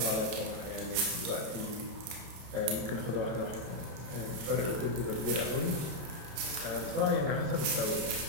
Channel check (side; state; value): left; late; 30 ms